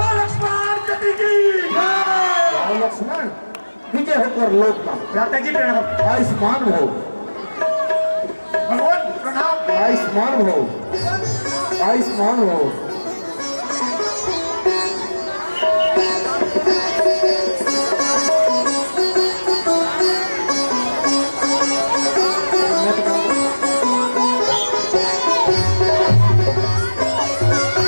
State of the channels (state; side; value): inverted; both; correlation -1.00